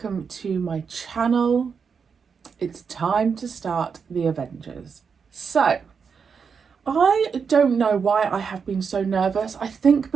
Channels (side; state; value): left; quieter; 6.0 dB